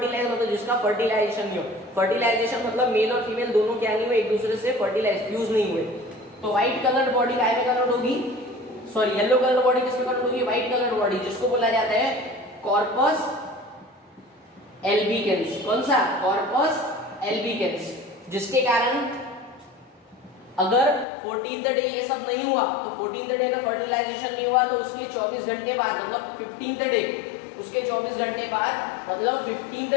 मतलब जिसका फर्टिलाइजेशन नहीं हो, फर्टिलाइजेशन मतलब मेल और फीमेल दोनों क्या नहीं हुए, एक दूसरे से फर्टिलाइज फ्यूज नहीं हुए, तो व्हाइट कलर बॉडी काय में कन्वर्ट होगी, सॉरी येलो कलर बॉडी किसमें कन्वर्ट होगी, व्हाइट कलर बॉडी, जिसको बोला जाता है कॉर्पस एल्बिकेंस। कौन सा, कॉर्पस एल्बिकेंस। जिसके कारण अगर 14th डे ये सब नहीं हुआ, तो 14th डे का फर्टिलाइजेशन नहीं हुआ तो उसके 24 घंटे बाद, मतलब 15th डे, उसके 24 घंटे बाद मतलब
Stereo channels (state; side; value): drops out; right; at 21.1 s